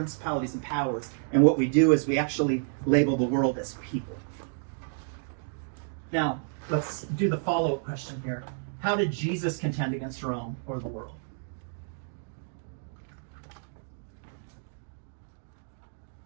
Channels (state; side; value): silent; left; digital silence